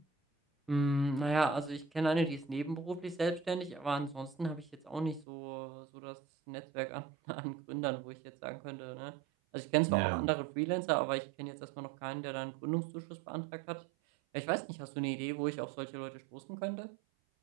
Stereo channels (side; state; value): left; drops out; at 5.2 s